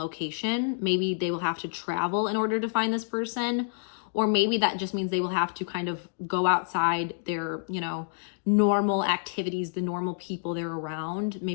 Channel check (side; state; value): right; silent; digital silence